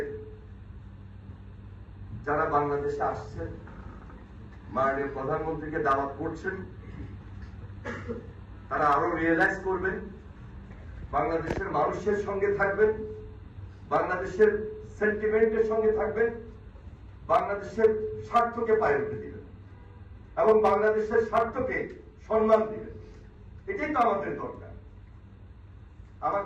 যারা বাংলাদেশে আসছেন, মাননীয় প্রধানমন্ত্রীকে দাওয়াত করছেন, তারা আরো রিয়েলাইজ করবেন, বাংলাদেশের মানুষের সঙ্গে থাকবেন, বাংলাদেশের সেন্টিমেন্টের সঙ্গে থাকবেন, বাংলাদেশের স্বার্থকে পায়ে উঠে দিবেন এবং বাংলাদেশের স্বার্থকে সম্মান দিবেন। এটাই তো আমাদের দরকার।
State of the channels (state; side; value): identical; both; correlation 1.00